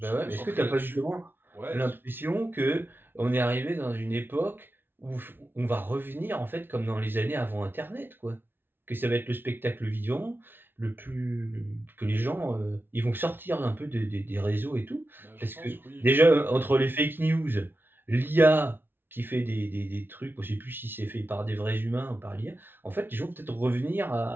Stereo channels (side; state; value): left; late; 0.10 ms